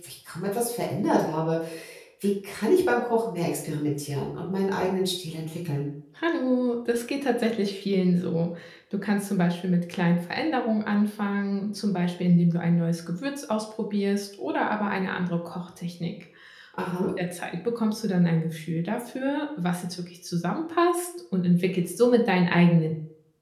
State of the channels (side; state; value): both; identical; correlation 1.00